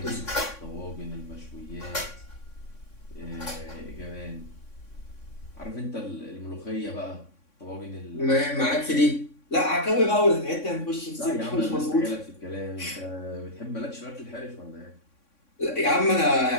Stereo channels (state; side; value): late; right; 3.6 ms